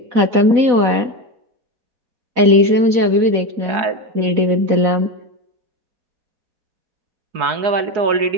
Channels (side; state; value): left; late; 4.1 ms